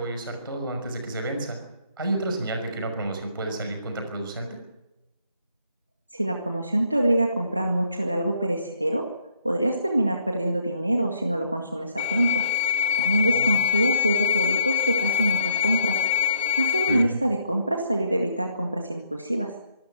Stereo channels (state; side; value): inverted; both; correlation -0.69